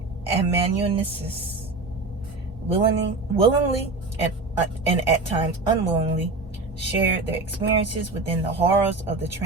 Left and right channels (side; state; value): left; quieter; 3.4 dB